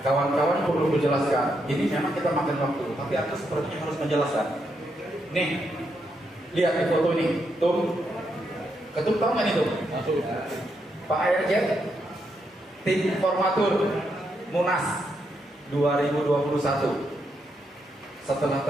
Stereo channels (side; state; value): both; normal; correlation 0.80